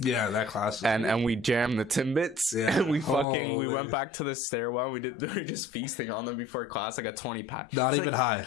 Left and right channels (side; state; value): right; drops out; at 3.2 s